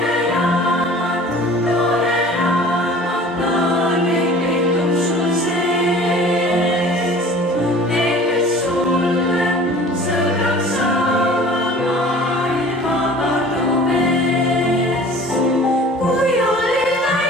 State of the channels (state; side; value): normal; both; correlation 0.45